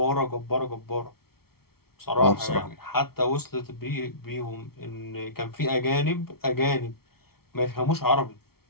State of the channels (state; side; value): late; right; 0.94 ms